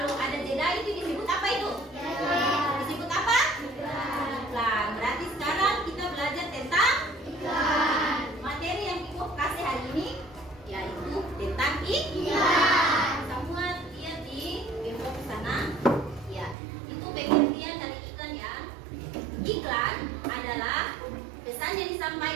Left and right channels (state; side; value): drops out; left; at 16.6 s